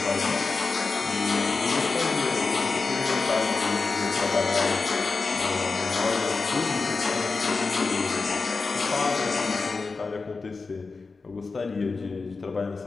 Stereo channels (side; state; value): right; quieter; 4.2 dB